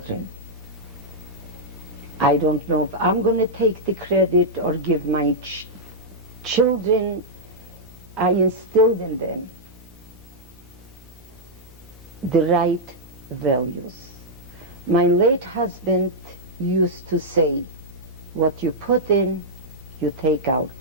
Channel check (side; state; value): both; normal; correlation -0.07